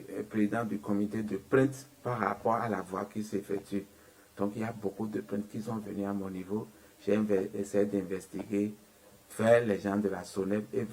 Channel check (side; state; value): both; identical; correlation 1.00